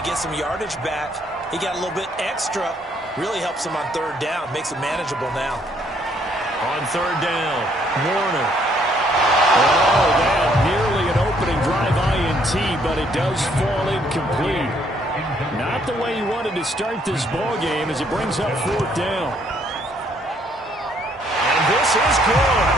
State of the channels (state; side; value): normal; both; correlation 0.67